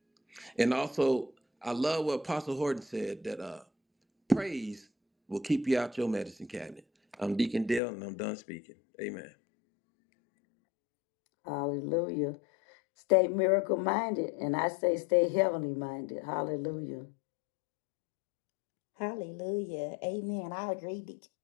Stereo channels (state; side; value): drops out; right; at 7.8 s